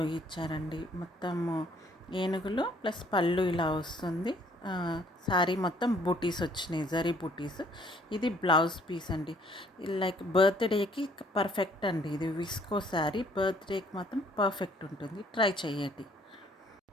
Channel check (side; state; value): both; normal; correlation 0.61